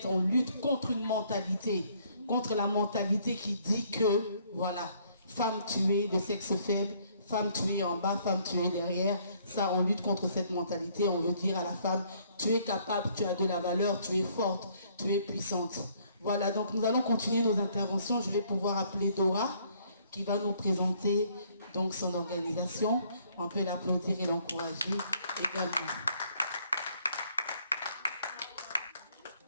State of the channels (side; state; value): both; inverted; correlation -0.64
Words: on lutte contre une mentalité. Contre la mentalité qui dit que, voilà, femme tuée de sexe faible, femme tuée en bas, femme tuée derrière. Ça, on lutte contre cette mentalité. On veut dire à la femme, tu es capable, tu as de la valeur, tu es forte, tu es puissante. Voilà, donc nous allons continuer nos interventions. Je vais pouvoir appeler Dora, qui va nous présenter donc son organisation. On peut l'applaudir et l'encourager également.